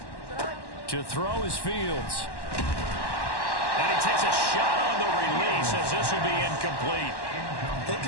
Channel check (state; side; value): late; right; 1.1 ms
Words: To throw is Fields. And he takes a shot on the release as this will be incomplete. They